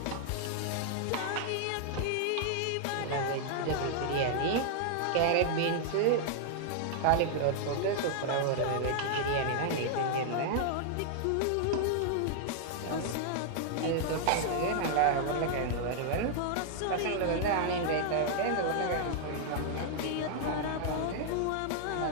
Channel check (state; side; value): different; both; correlation -0.01